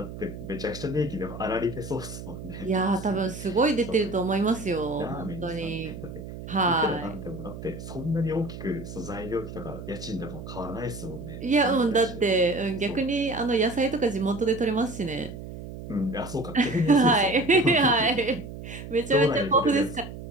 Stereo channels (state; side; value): noise; right; hum, 11 dB below the sound